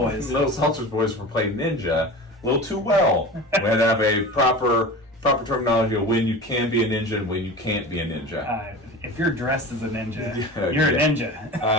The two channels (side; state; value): both; normal; correlation 0.33